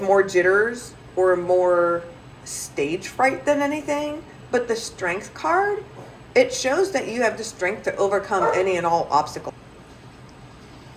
jitters or more stage fright than anything. But the strength card, it shows that you have the strength to overcome any and all obstacles.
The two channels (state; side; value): identical; both; correlation 1.00